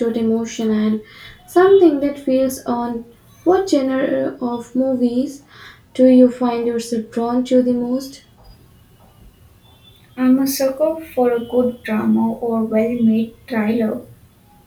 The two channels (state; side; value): identical; both; correlation 1.00